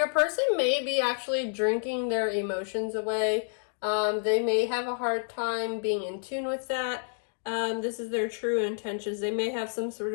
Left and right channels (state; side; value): silent; right; digital silence